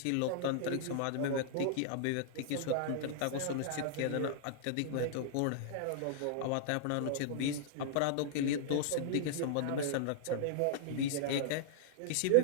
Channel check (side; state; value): both; different; correlation -0.01